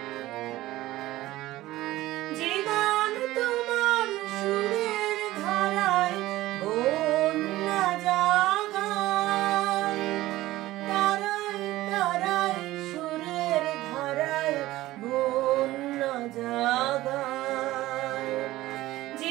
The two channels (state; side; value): quieter; left; 16.7 dB